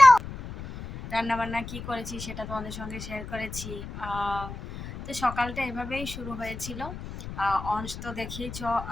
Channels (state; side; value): noise; left; rumble, 10 dB below the sound